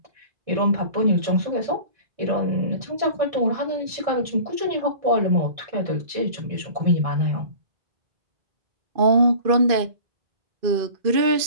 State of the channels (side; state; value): left; late; 2.5 ms